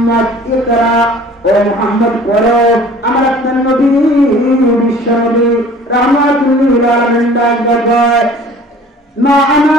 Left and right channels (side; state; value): both; normal; correlation 0.48